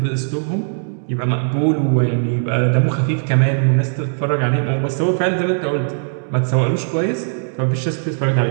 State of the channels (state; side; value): silent; left; digital silence